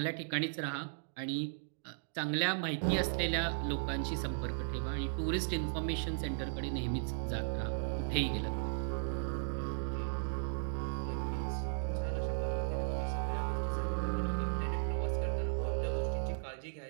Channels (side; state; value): left; silent; digital silence